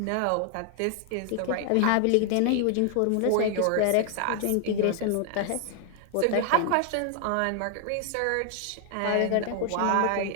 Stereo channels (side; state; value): both; different; correlation 0.00